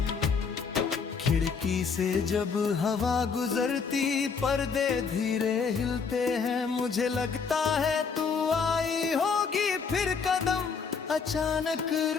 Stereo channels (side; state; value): right; quieter; 5.6 dB